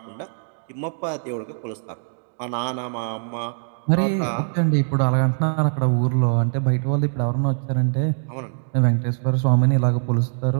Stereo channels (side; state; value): left; silent; digital silence